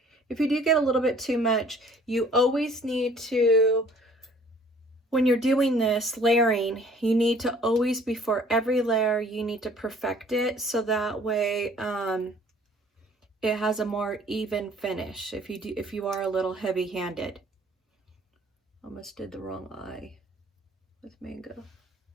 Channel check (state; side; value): normal; both; correlation 0.55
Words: if you do get a little bit too much, you always need to, when you're doing this layering, you need to always, before every layer, you need to perfect it, so that way it has a more even finish. If you are a little heavy-handed. Almost did the wrong eye with mango.